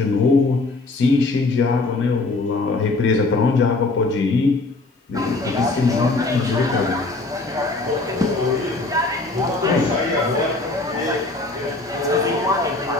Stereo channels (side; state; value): right; quieter; 3.3 dB